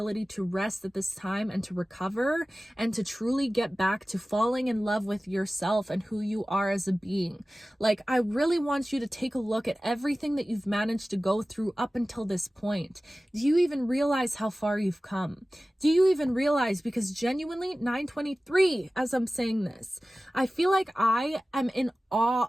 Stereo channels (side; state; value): both; normal; correlation 0.96